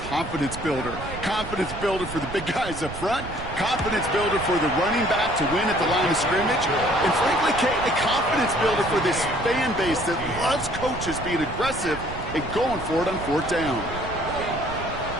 builder. Confidence builder for the big guys up front. Confidence builder for the running back to win at the line of scrimmage. And frankly, Kate, a confidence builder for this fan base that loves coaches being aggressive and going for it on 4th down.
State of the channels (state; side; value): noise; right; rumble, 11 dB below the sound